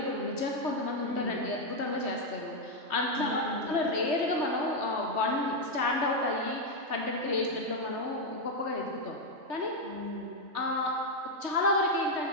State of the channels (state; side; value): late; left; 3.2 ms